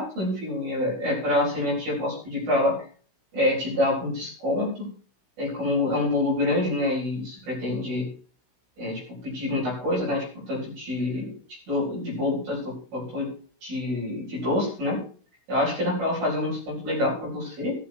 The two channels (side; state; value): left; late; 16 ms